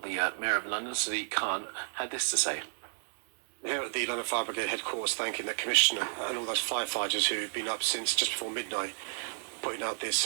the Mayor of London, Sadiq Khan, had this to say. Here at the London Fire Brigade headquarters, thanking the Commissioner and all those firefighters who've been up since just before midnight, putting out this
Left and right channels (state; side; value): silent; left; 57 dB below the other